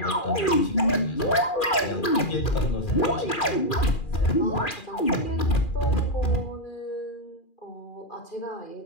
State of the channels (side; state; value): right; late; 2.4 ms